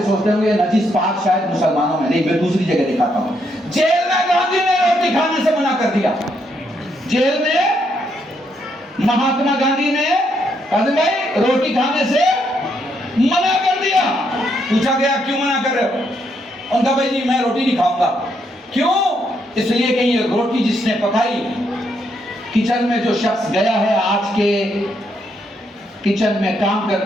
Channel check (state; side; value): normal; both; correlation 0.76